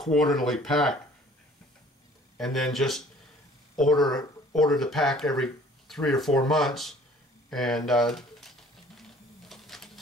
pack, and then just order the pack every 3 or 4 months, and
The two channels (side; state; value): both; normal; correlation 0.53